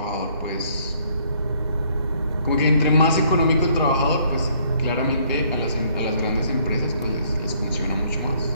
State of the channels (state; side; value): inverted; both; correlation -0.64